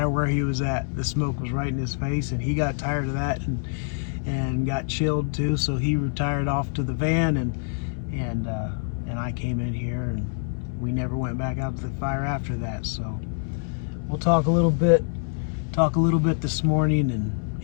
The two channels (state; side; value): silent; right; 61 dB below the other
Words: where he was at, the smoke was right in his face, and he got tired of that and got chilled too. So he retired off to the van, and I came in here, and we never went back out to the fire after that. So we'll talk a little bit this morning, and